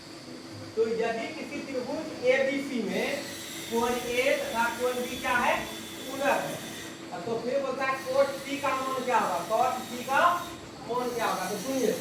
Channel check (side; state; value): both; identical; correlation 1.00